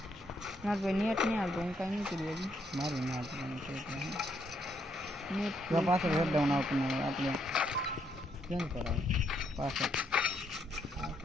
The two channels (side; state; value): both; normal; correlation 0.74